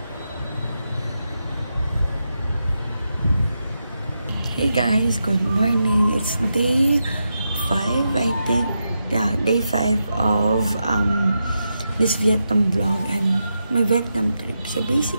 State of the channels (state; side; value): inverted; both; correlation -0.87